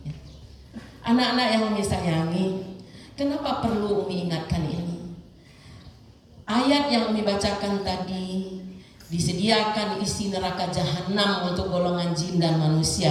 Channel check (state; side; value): identical; both; correlation 1.00